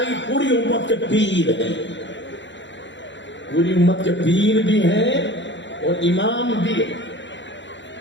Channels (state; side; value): late; right; 0.53 ms